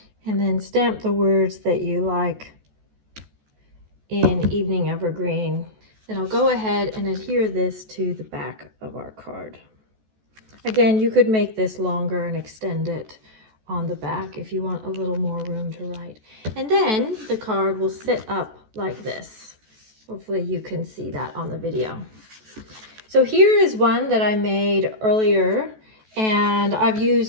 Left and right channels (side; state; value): left; late; 14 ms